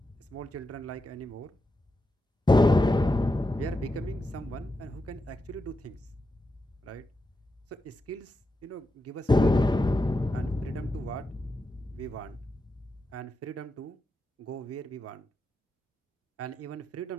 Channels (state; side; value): normal; both; correlation 0.86